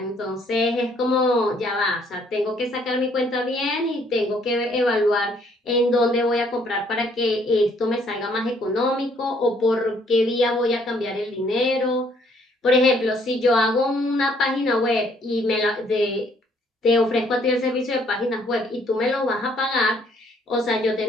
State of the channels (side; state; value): both; normal; correlation 0.65